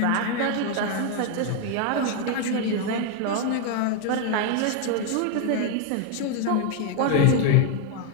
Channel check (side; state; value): both; different; correlation 0.00